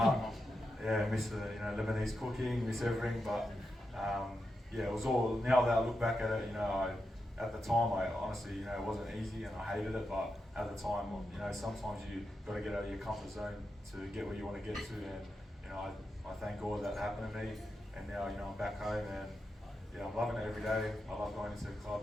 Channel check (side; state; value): both; normal; correlation 0.87